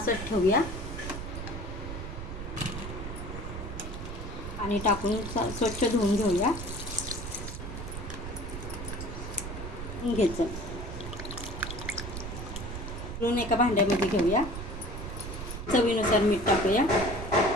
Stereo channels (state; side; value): noise; right; rumble, 7 dB below the sound